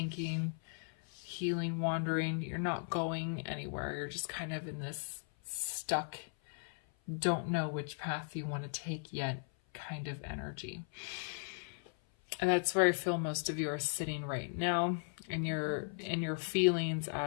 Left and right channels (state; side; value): silent; right; 53 dB below the other